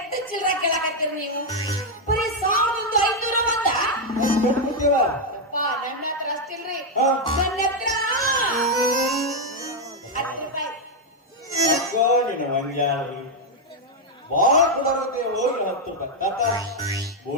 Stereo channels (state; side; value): normal; both; correlation 0.01